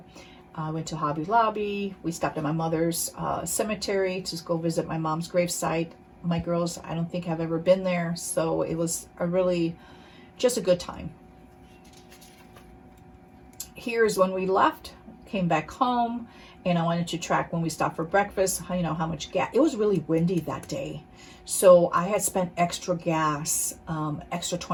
Went to Hobby Lobby. We stopped at my mother's cemetery to go visit my mom's gravesite. My girls, I don't think have ever been there, so it was just a good time. Here's when we left, came back home, and I wanted to track when we stopped for breakfast, you know, how much gas. It was really windy that day, so I had spent extra gas, extra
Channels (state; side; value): identical; both; correlation 1.00